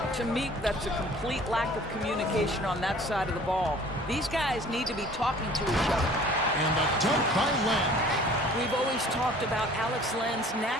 To me, that's a complete lack of communication on that side of the ball. These guys need to be talking to each other. And the dunk by Len. We've always talked about Alex Len's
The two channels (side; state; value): both; normal; correlation 0.50